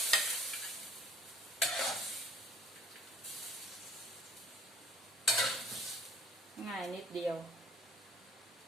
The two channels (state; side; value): normal; both; correlation 0.54